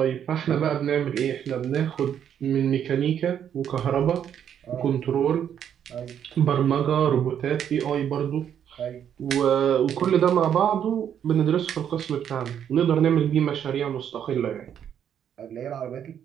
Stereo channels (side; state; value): left; quieter; 9.1 dB